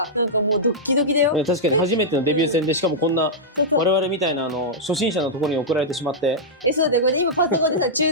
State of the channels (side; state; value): both; normal; correlation -0.09